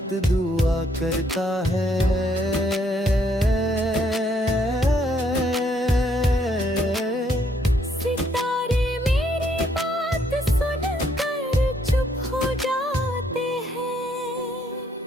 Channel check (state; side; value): normal; both; correlation 0.69